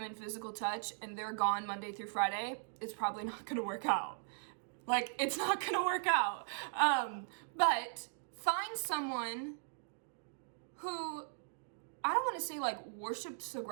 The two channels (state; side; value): silent; left; digital silence